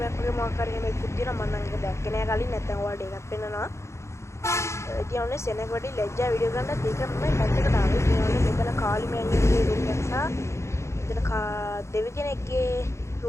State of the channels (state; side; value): late; right; 0.14 ms